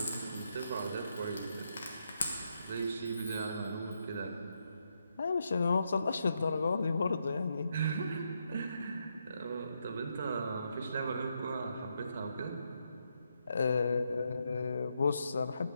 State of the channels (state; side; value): inverted; both; correlation -0.80